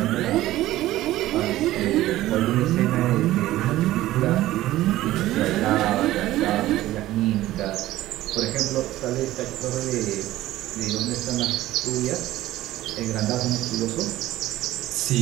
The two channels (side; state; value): left; quieter; 15.5 dB